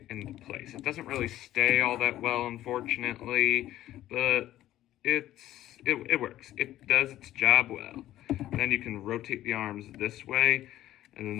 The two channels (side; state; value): right; quieter; 13.9 dB